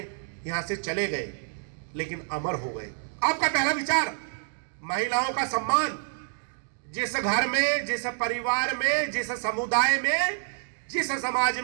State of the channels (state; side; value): silent; left; digital silence